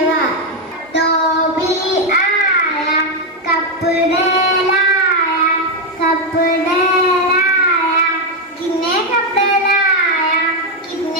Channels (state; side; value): normal; both; correlation 0.03